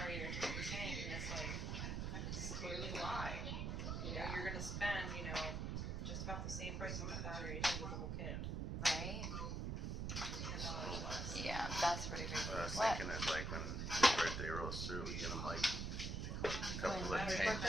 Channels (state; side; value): noise; right; rumble, 2 dB below the sound